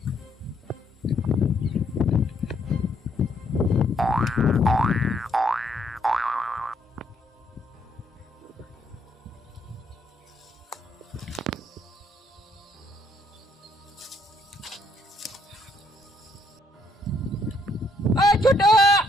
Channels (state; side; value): normal; both; correlation 0.70